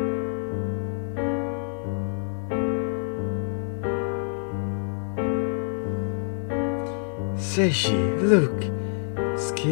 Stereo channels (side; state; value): right; silent; digital silence